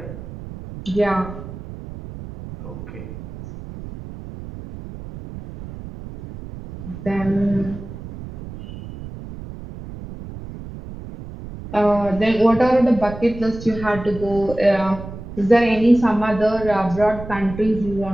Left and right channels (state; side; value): noise; right; rumble, 12 dB below the sound